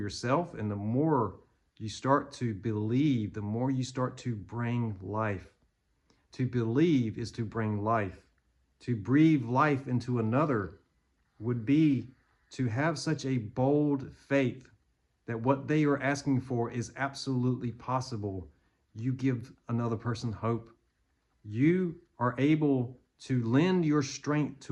and the more you start to believe, the more you start to bring life. To believe is to bring life. To breathe life into another would be to have such a bold faith that what they are asking for is absolutely possible. You give another person hope. You are able to lend your strength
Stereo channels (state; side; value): identical; both; correlation 1.00